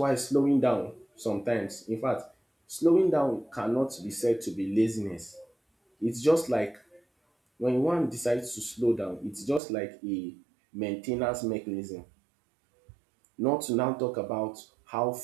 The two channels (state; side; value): drops out; left; at 9.6 s